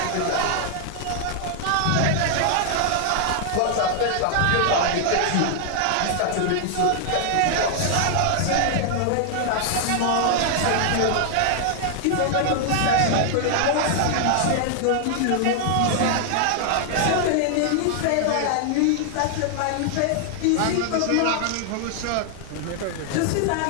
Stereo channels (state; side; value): different; both; correlation 0.00